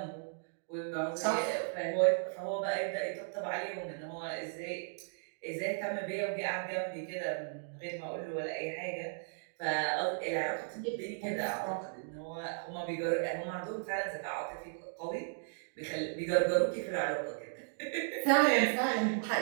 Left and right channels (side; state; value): left; silent; digital silence